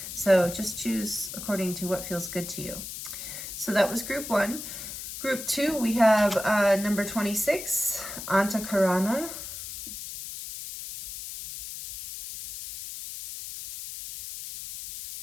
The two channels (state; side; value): noise; left; hiss, 9 dB below the sound